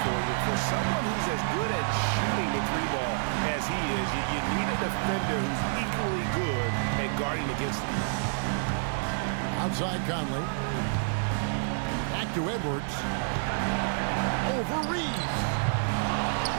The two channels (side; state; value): left; silent; 59 dB below the other